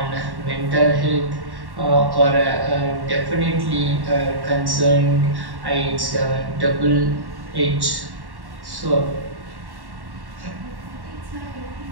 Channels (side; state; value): left; late; 1.1 ms